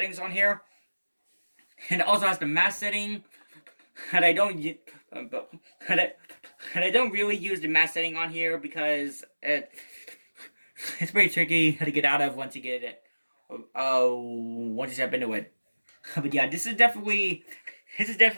on here. And it also has the mass setting. And I don't really use the mass setting on here because it's pretty tricky to get out of once you get it. Once you step into it. But yeah, this is definitely it's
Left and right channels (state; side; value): inverted; both; correlation -1.00